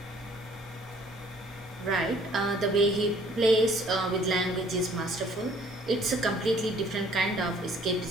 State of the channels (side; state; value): both; normal; correlation 0.58